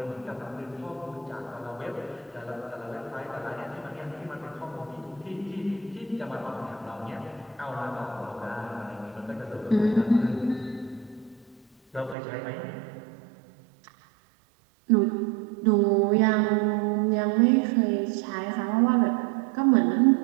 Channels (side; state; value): left; drops out; at 12.2 s